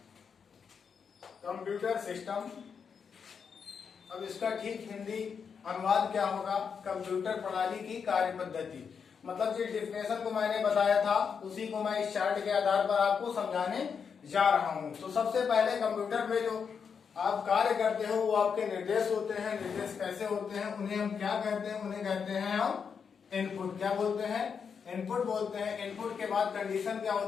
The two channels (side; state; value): right; quieter; 6.4 dB